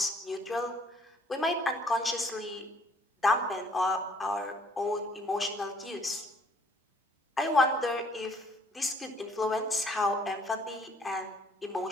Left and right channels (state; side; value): normal; both; correlation 0.61